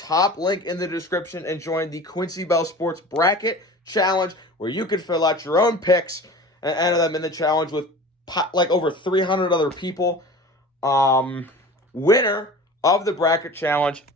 link in the description and join the Quincy Bell Sports Bracket Challenge, where you can fill out your own picks and enter them in the challenge with like over 300 other people. Winner of the bracket challenge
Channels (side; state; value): both; normal; correlation 0.38